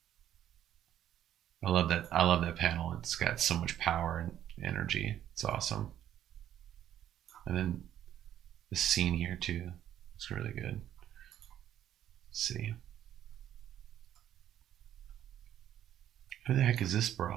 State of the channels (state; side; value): quieter; left; 11.2 dB